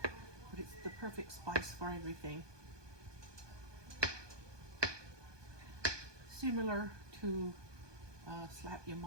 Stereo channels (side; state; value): left; late; 1.2 ms